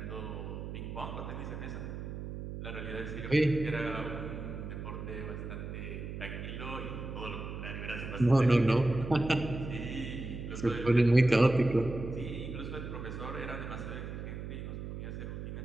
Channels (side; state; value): right; noise; hum, 7 dB below the sound